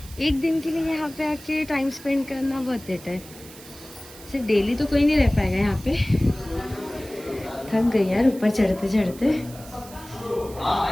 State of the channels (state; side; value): noise; right; hiss, 18 dB below the sound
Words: एक दिन के लिए यहाँ पे आके टाइम स्पेंड करना बहुत बेटर है। सिर्फ डेली तो कोई नहीं रह पाएगा यहाँ पे। थक गई यार ऊपर चढ़ते चढ़ते।